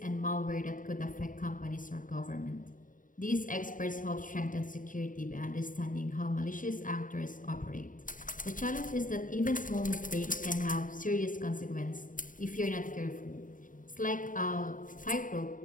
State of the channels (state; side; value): late; right; 0.39 ms